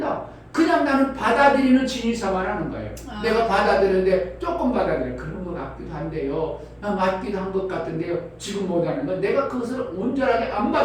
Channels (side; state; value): both; identical; correlation 1.00